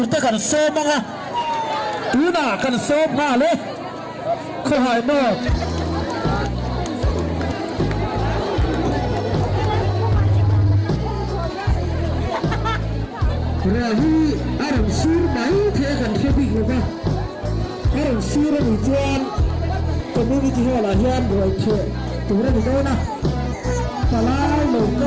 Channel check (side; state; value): both; identical; correlation 1.00